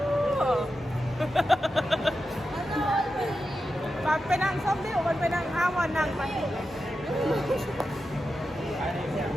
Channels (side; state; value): both; normal; correlation 0.90